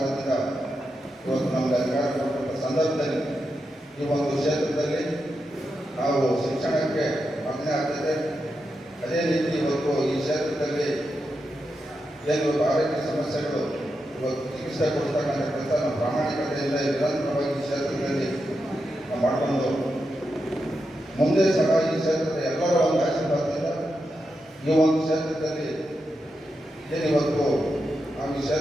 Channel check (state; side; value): normal; both; correlation 0.87